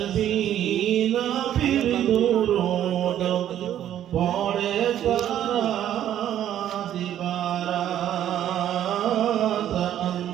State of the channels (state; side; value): quieter; left; 11.1 dB